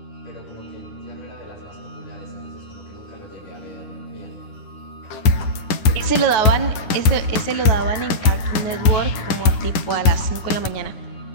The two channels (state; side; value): late; right; 10 ms